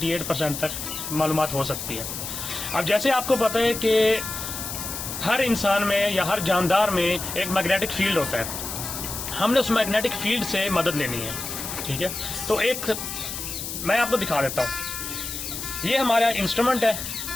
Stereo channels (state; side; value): noise; left; hiss, 6 dB below the sound